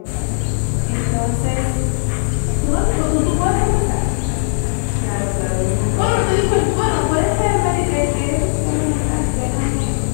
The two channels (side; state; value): right; silent; digital silence